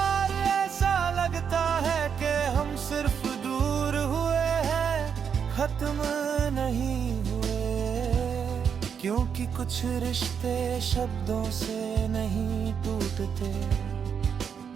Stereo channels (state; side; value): quieter; left; 7.2 dB